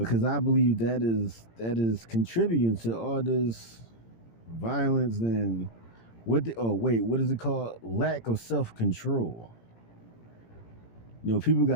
I believe that is contributing to all this violence and what is it called? Lack of self-control. People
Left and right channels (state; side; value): late; right; 18 ms